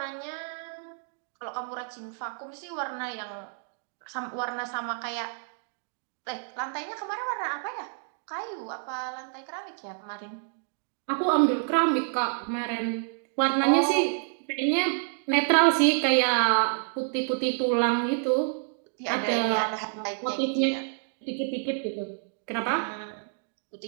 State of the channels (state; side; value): silent; left; digital silence